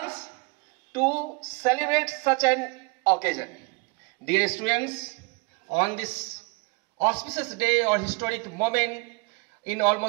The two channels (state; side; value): quieter; left; 28.9 dB